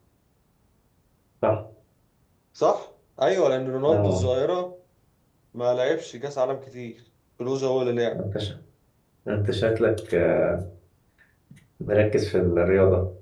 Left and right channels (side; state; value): both; identical; correlation 1.00